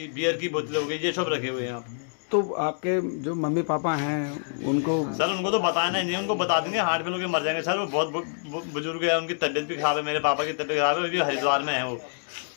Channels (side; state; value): right; silent; digital silence